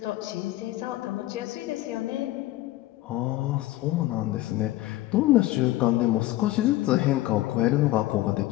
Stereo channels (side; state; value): right; quieter; 16.5 dB